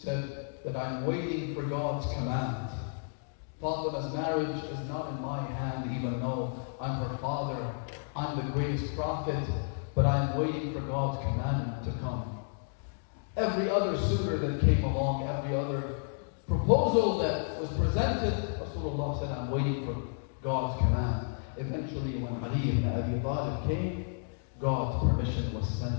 that I'm waiting for God's command. Fatima's marriage is not in my hand, even though I'm her father, I'm the greatest prophet, but I'm waiting for God's commandment to come. Every other suitor that came along, every other proposal that was presented, Rasulullah said, I'm waiting for God's command. Eventually, when Ali ibn Abi Talib came, God's permission was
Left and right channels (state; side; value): silent; right; digital silence